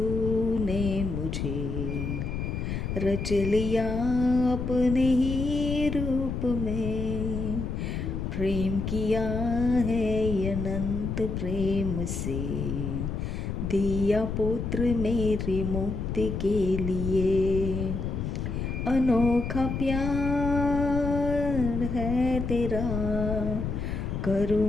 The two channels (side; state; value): left; noise; rumble, 3 dB below the sound